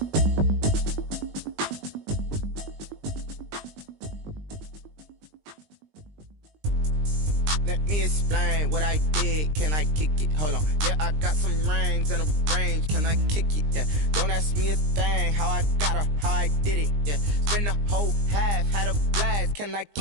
Let me explain what I did. Can I kick it? Hold on. Yeah, I got some rings and a range. Can I kick it? Yeah. Don't ask me a thing. How I got her, how I did it. Yeah. Spend the whole half, had a blast. Can I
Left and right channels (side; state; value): left; late; 20 ms